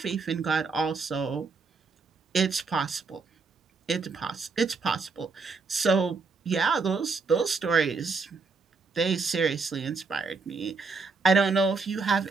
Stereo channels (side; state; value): left; quieter; 4.4 dB